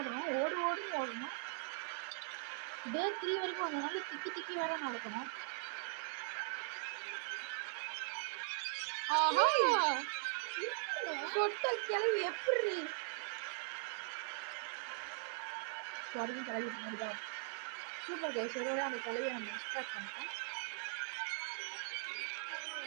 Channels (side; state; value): left; silent; 51 dB below the other